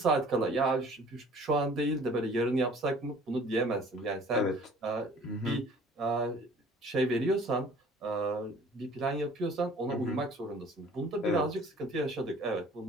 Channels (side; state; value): both; normal; correlation 0.51